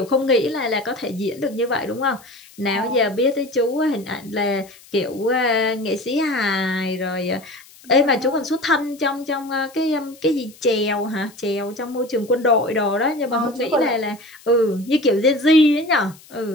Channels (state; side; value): noise; left; hiss, 24 dB below the sound